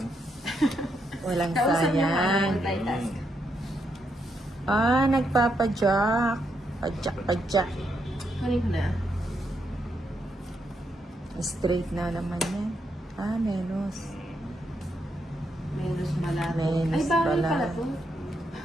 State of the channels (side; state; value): both; normal; correlation 0.79